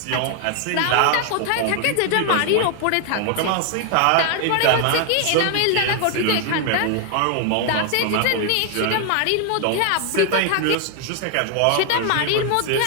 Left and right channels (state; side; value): different; both; correlation 0.00